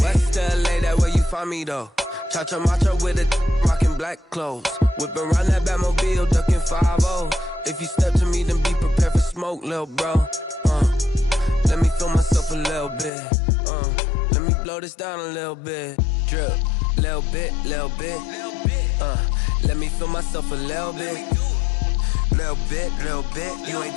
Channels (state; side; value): drops out; right; at 13.1 s